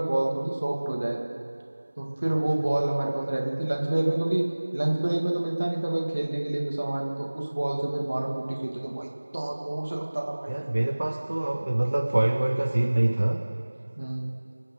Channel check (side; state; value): both; inverted; correlation -1.00